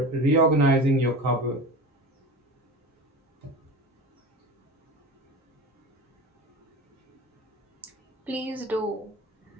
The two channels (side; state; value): both; normal; correlation 0.32